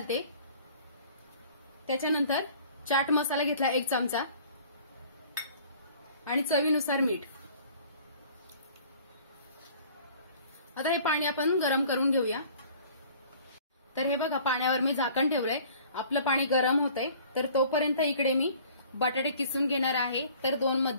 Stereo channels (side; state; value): both; inverted; correlation -0.51